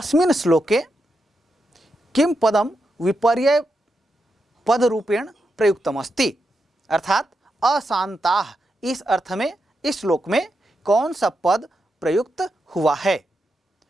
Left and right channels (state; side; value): normal; both; correlation 0.85